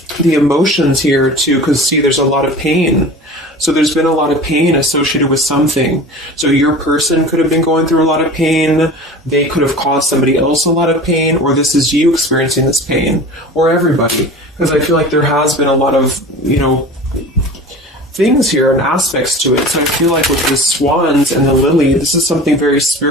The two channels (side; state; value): both; normal; correlation 0.37